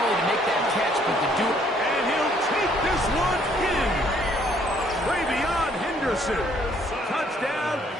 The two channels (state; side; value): normal; both; correlation 0.64